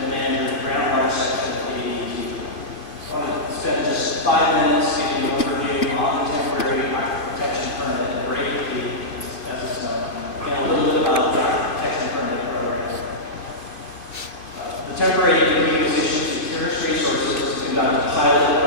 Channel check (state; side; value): late; right; 2.5 ms